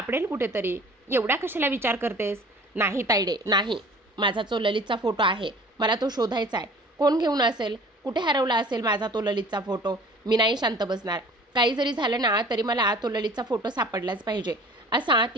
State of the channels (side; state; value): both; normal; correlation 0.47